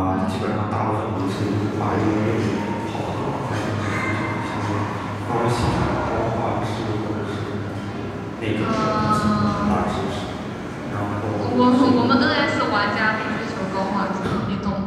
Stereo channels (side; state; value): both; identical; correlation 1.00